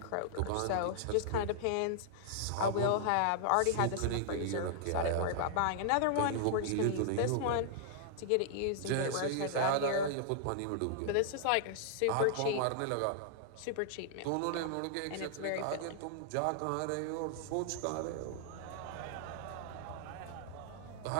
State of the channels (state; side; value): different; both; correlation -0.01